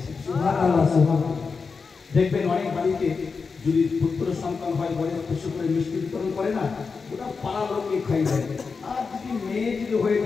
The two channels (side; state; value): right; quieter; 4.9 dB